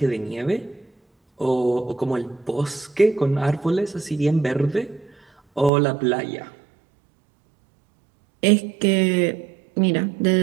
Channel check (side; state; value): left; drops out; at 5.7 s